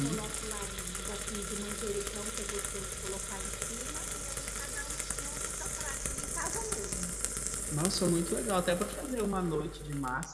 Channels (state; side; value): identical; both; correlation 1.00